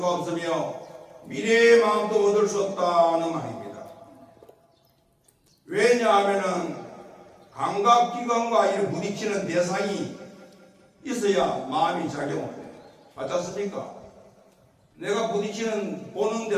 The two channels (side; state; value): both; identical; correlation 1.00